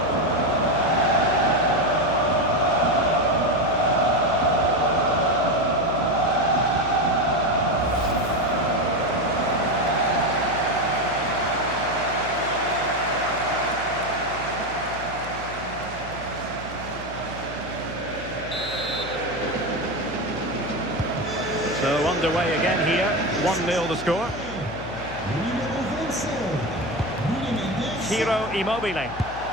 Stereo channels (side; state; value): left; noise; hum, 14 dB below the sound